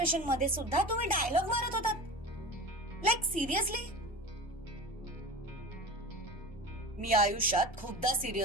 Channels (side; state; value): both; normal; correlation 0.33